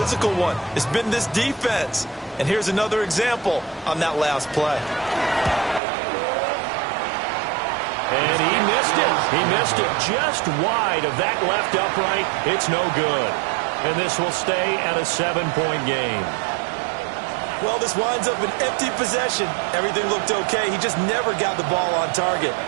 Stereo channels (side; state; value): left; drops out; at 5.8 s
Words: one. It's been this defense. And here's another example on that last play. And he missed it. He missed it just wide of that left upright. It's no good. And this will stay at a 7-point game. Well, this winds up an empty possession. Everything looked okay. He just never got the ball on target.